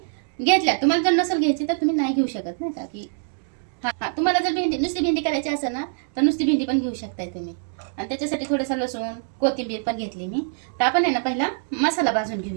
घेतल्यात. तुम्हाला जर नसेल घ्यायची तर तुम्ही नाही घेऊ शकत नाही का. की हा तुम्हाला जर नुसती भेंडी करायची असेल ना तर नुसती भेंडी पण घेऊ शकताय तुम्ही. आणि त्याच्यासाठी थोडंसं लसूण, कोथिंबीर पण घेतली मी. तर आपण आहे ना पहिला मसाला भाजून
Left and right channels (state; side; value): silent; left; digital silence